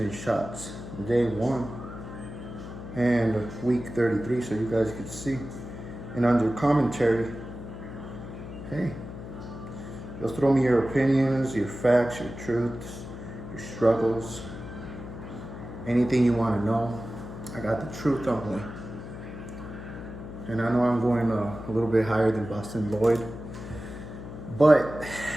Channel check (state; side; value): noise; left; hum, 11 dB below the sound